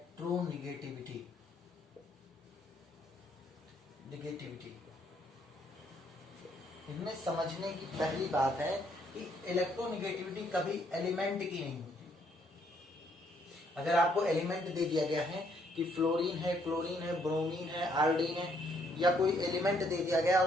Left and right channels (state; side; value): normal; both; correlation 0.69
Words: इसमें समझने की पहली बात है कि इलेक्ट्रोनेगेटिविटी कभी एलिमेंट की नहीं होती. अगर आपको एलिमेंट दे दिया गया है कि फ्लोरीन है, क्लोरीन है, ब्रोमीन है, आयोडीन है, या कोई एलिमेंट दे दिया गया और